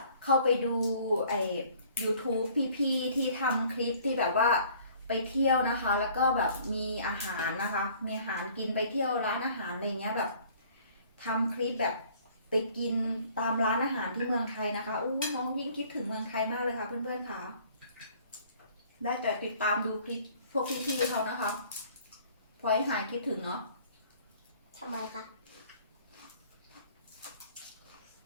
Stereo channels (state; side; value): inverted; both; correlation -0.55